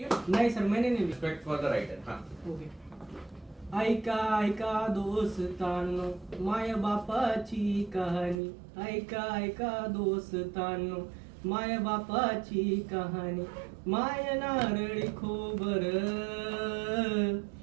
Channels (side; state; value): left; drops out; at 8.4 s